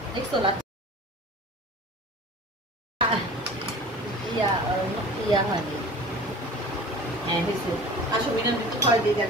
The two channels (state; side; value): normal; both; correlation 0.41